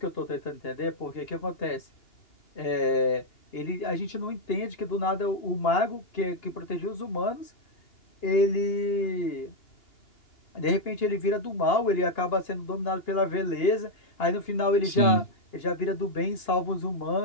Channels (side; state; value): right; late; 2.8 ms